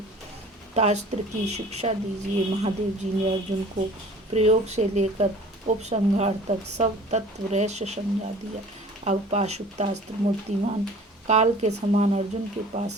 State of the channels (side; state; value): both; normal; correlation 0.47